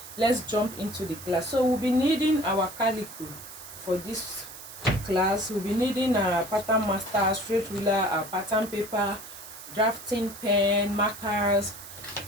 let's jump into the class. So we'll be needing our calico for this class. We'll be needing our pattern master, straight ruler, our pattern paper, drafting pen, markers,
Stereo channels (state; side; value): noise; right; hiss, 14 dB below the sound